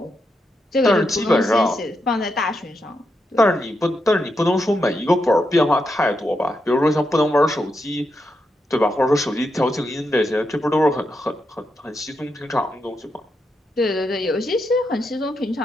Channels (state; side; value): normal; both; correlation 0.84